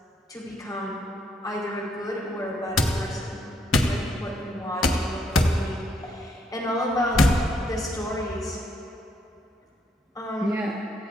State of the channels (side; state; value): both; normal; correlation 0.73